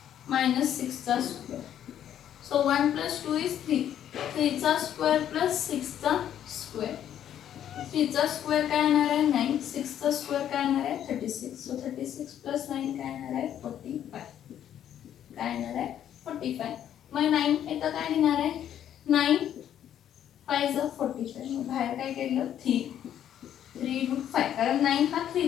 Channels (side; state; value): right; quieter; 10.4 dB